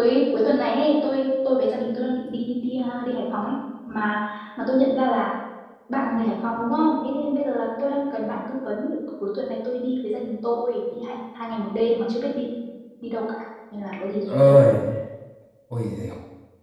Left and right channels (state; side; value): identical; both; correlation 1.00